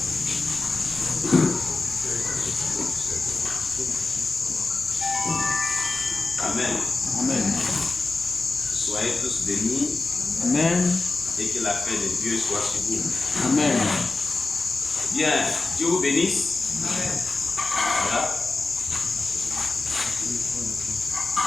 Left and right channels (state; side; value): quieter; right; 3.5 dB